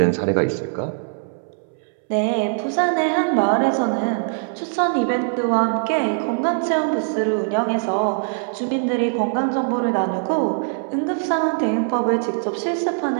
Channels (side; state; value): left; silent; 65 dB below the other